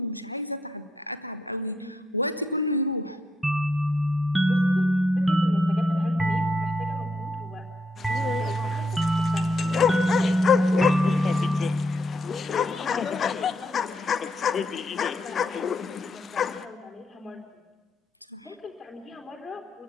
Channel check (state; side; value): normal; both; correlation 0.77